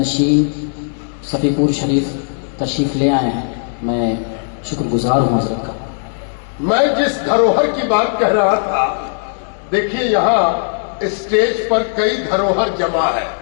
صفی پور شریف تشریف لے آئے ہیں. میں شکر گزار ہوں حضرت کا. میں جس دھروہر کی بات کہہ رہا تھا، دیکھیے یہاں اسٹیج پر کئی دھروہر جمع ہے.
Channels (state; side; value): silent; right; 68 dB below the other